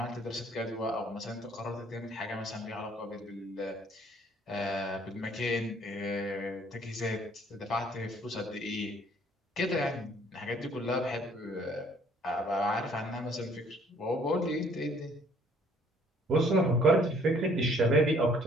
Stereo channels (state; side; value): normal; both; correlation 0.60